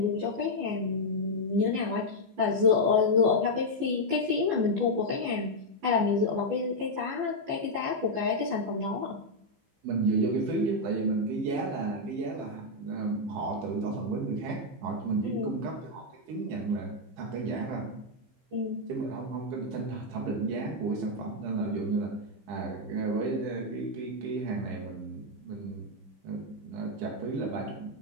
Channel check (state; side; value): late; left; 14 ms